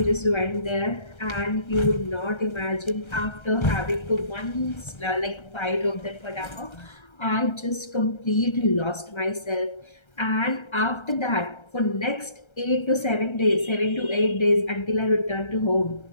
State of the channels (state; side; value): late; right; 1.3 ms